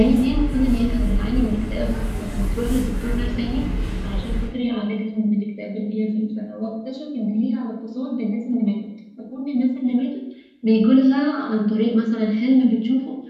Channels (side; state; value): both; identical; correlation 1.00